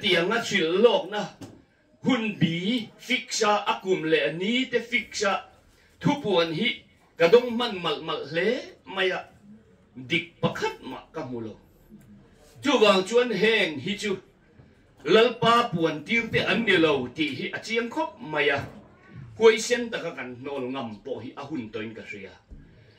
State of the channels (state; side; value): identical; both; correlation 1.00